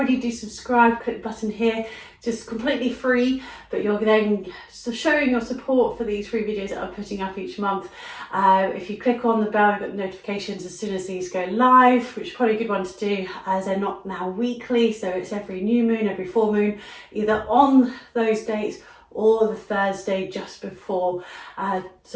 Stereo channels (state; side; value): identical; both; correlation 1.00